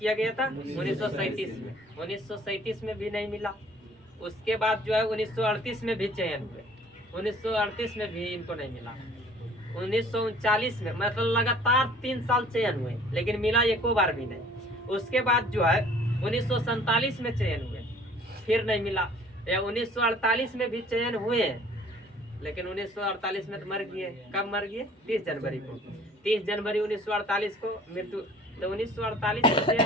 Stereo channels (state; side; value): normal; both; correlation 0.53